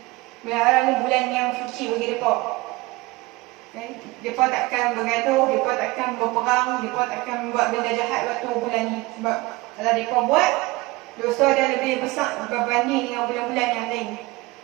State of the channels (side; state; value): left; quieter; 21.8 dB